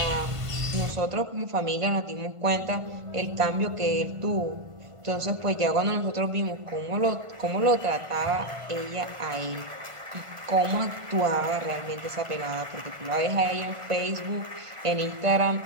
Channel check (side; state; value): left; late; 1.5 ms